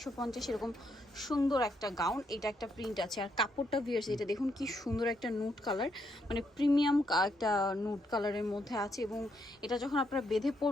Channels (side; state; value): both; normal; correlation 0.76